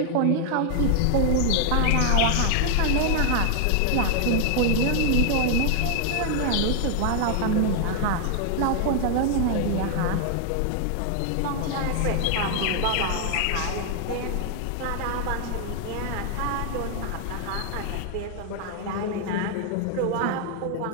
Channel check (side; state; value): both; different; correlation 0.00